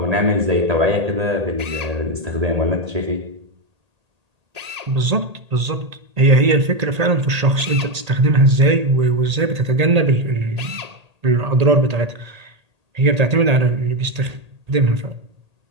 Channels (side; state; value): left; late; 1.8 ms